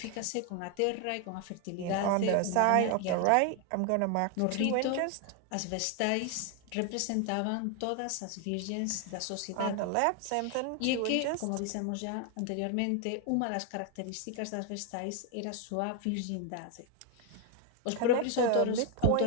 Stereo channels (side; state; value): both; different; correlation 0.01